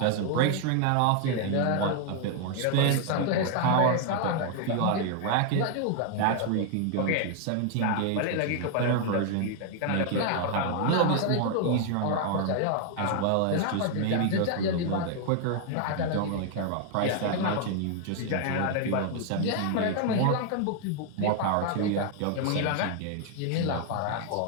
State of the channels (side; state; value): both; different; correlation 0.00